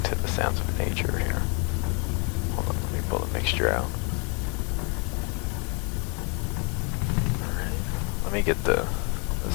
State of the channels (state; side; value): quieter; right; 34.8 dB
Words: the sounds of nature here. Hold on, let me pull the mixture out. Alright, let me get the